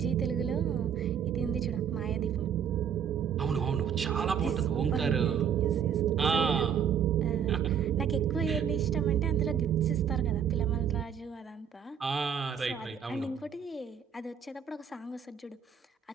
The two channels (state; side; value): quieter; left; 8.0 dB